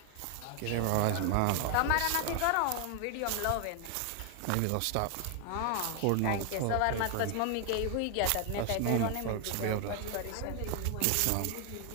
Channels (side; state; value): both; different; correlation 0.00